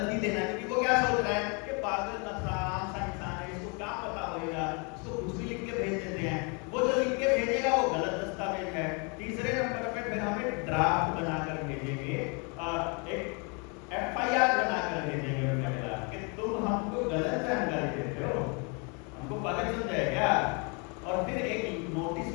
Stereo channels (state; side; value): quieter; right; 33.8 dB